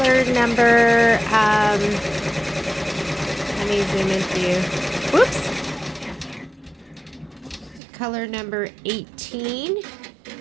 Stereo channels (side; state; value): left; drops out; at 7.8 s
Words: number, let me zoom in for you. Whoops. Color number 18.